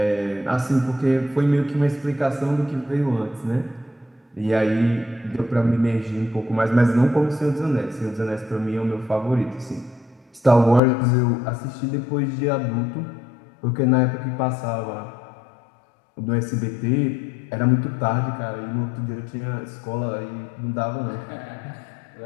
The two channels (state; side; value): drops out; right; at 10.8 s